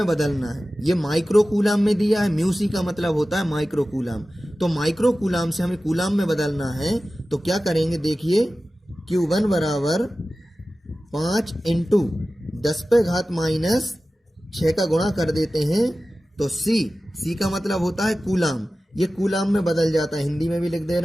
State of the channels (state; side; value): normal; both; correlation 0.95